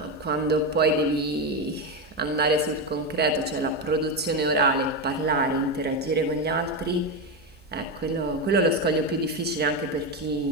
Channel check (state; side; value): normal; both; correlation 0.12